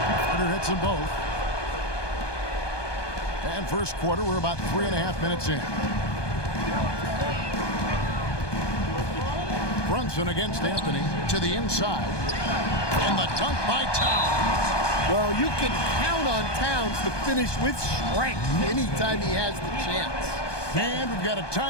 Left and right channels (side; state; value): right; late; 1.2 ms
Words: Carter hits them both. And first quarter, we're about 3.5 minutes in. Brunson against Anthony to the inside. And the dunk by Towns. Well, you can count on Towns to finish with strength anytime he has the chance. And we've got a